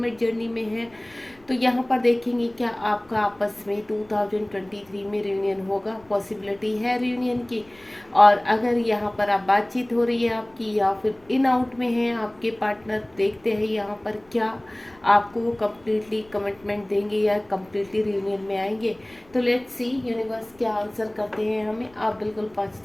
जर्नी में हैं, तो यहाँ पर देखेंगे क्या आपका आपस में 2023 में रियूनियन होगा। पॉसिबिलिटी है रियूनियन की। और अगर यहाँ पर आप बातचीत हो रही है आपकी या फिर इन आउट में है आपके पार्टनर, देखते हैं यहाँ पर क्या आपको वो कम्प्लीटली कमिटमेंट देंगे या कम्प्लीटली रियूनियन में आएंगे। तो लेट्स सी यूनिवर्स क्या आंसर करते हैं हमें। आप बिल्कुल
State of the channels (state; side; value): noise; left; rumble, 29 dB below the sound